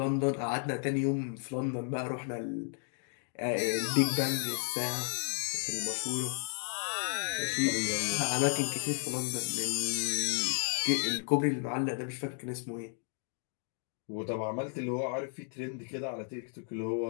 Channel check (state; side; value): silent; right; 56 dB below the other